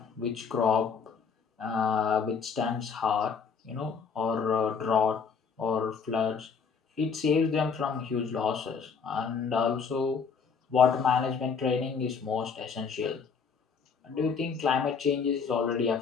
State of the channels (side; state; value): right; quieter; 5.9 dB